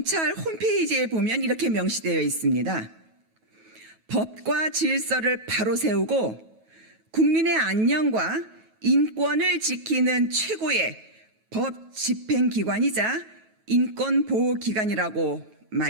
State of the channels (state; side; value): late; left; 9.3 ms